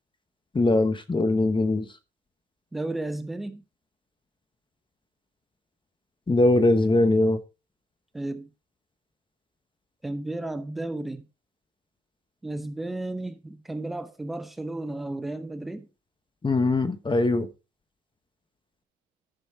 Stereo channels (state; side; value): normal; both; correlation 0.84